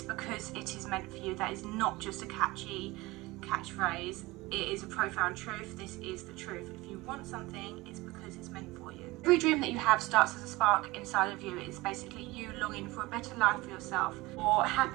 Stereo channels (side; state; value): left; quieter; 21.0 dB